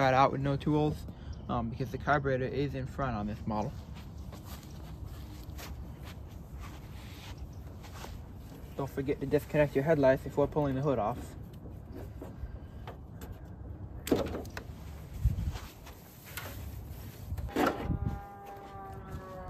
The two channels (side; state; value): both; identical; correlation 1.00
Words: out with no tools, because the carburetor is in front on this model. Don't forget to disconnect your headlights before pulling the hood off. And